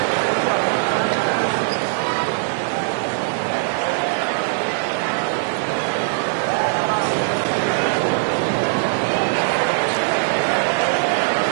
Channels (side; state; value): left; silent; digital silence